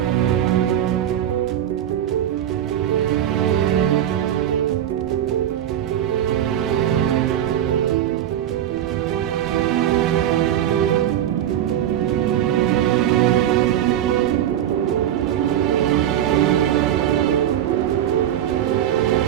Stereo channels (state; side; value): quieter; left; 10.9 dB